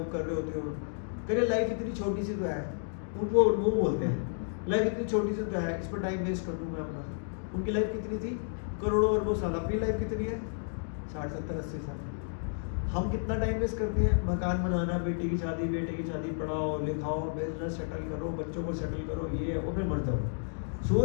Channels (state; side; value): silent; right; digital silence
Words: कर रहे होते हो। कह रहे लाइफ इतनी छोटी सी तो है। उनको वो बोलते हैं लाइफ इतनी छोटी सी तो है, इस पर टाइम वेस्ट कर दूँ मैं अपना। उनकी लाइफ कितनी थी? करोड़ों अरबों साल। अपनी लाइफ कितनी है? 60, 70, 80 साल। हम कितना टाइम वेस्ट करते हैं? मकान बनाना, बेटी की शादी, बेटे की शादी, पढ़ाओ लिखाओ, बिजनेस सेटल करो, बच्चों को सेटल करो, ये और फिर मर जाओ।